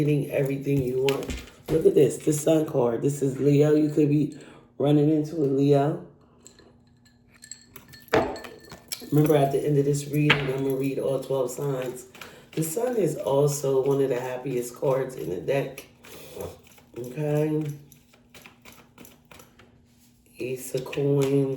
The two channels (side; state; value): both; identical; correlation 1.00